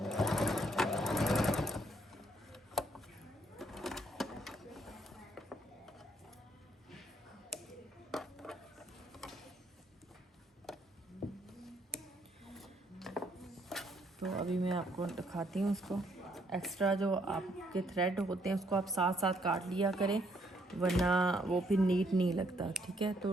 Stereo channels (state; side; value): normal; both; correlation 0.70